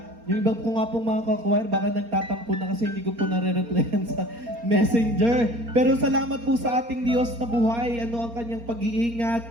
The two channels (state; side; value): late; left; 4.3 ms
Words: Yung iba po nga pong mga kakwire, baka nagtatampo na kasi hindi ko po nare-replyan sa messenger. Pero salamat po sa ating Diyos na buhay, ang kanyang pag-iingat.